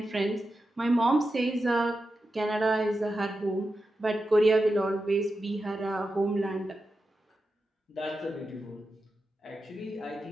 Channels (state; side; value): normal; both; correlation 0.90